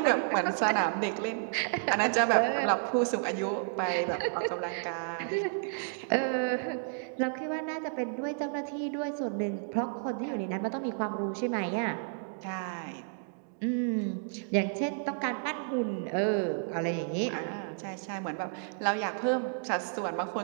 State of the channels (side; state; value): left; silent; digital silence